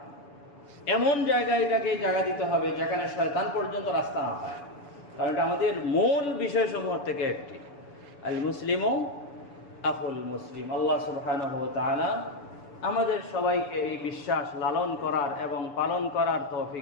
এমন জায়গায় এটাকে জায়গা দিতে হবে যেখানে শয়তান পর্যন্ত রাস্তা না পায়। কারণ এটা আমাদের মূল বিষয়সমূহ থেকে একটি, আল মুসলিমু আখুল মুসলিম। আল্লাহ সুবহানাহু ওয়া তাআলা আমাদের সবাইকে এই বিশ্বাস লালন করার এবং পালন করার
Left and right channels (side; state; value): right; late; 7.0 ms